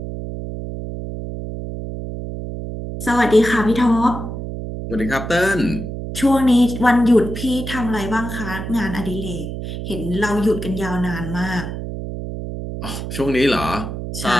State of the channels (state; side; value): noise; right; hum, 7 dB below the sound